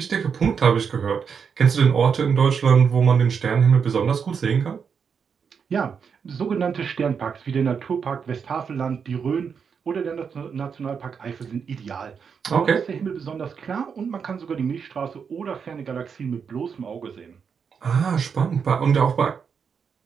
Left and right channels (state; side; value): quieter; left; 6.4 dB